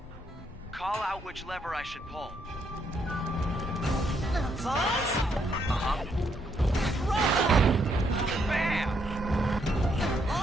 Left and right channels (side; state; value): both; normal; correlation 0.74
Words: Call out which lever I should pull. Sauce? Uh-huh. Run! Bam!